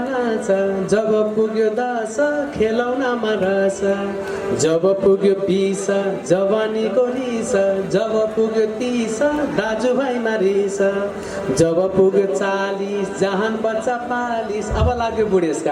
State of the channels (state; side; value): identical; both; correlation 1.00